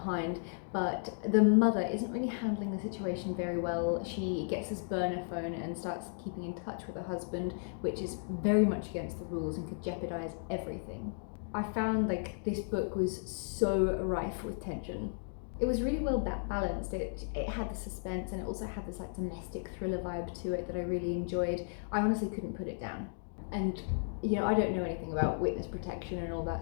but the mother isn't really handling the situation very well. She gets this burner phone and starts keeping in touch with her husband, which is very much against the rules and could jeopardize everything. I found like this book was so rife with tension. It was really well balanced. It had the suspense and it also had this like domestic thriller vibe to it that I really enjoyed. I honestly couldn't put it down. And you know, I don't know anything about witness protection and all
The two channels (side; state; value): right; silent; digital silence